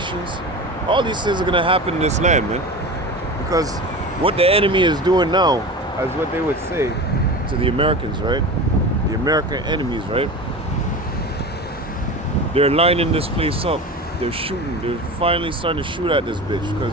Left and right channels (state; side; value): normal; both; correlation 0.31